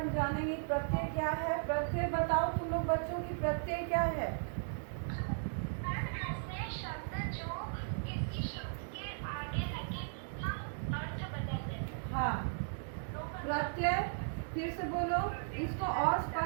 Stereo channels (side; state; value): left; silent; digital silence